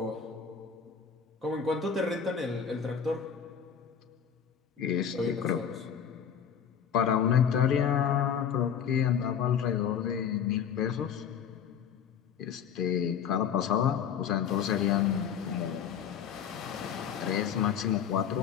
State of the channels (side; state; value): right; quieter; 7.8 dB